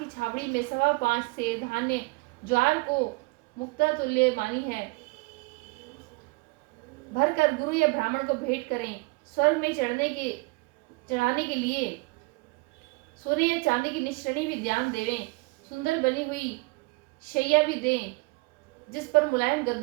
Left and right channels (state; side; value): quieter; left; 27.0 dB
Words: छावड़ी में 5.25 से धान्य ज्वार को मुक्ता तुल्य मानी है भर कर गुरु या ब्राह्मण को भेंट करें। स्वर्ग में चढ़ाने के लिए सोने या चांदी की निश्रणी भी ध्यान देवें। सुंदर बनी हुई शैया भी दें जिस पर मुलायम